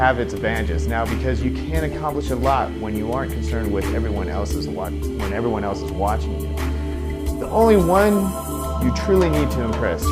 its advantages now because you can accomplish a lot when you aren't concerned with everyone else is watching you. The only one you truly need to impress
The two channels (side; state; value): both; identical; correlation 1.00